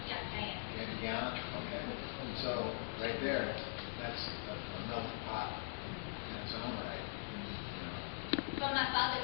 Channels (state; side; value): silent; right; digital silence